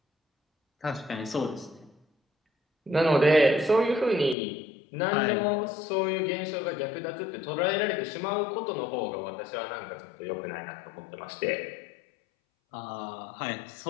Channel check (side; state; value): right; drops out; at 4.4 s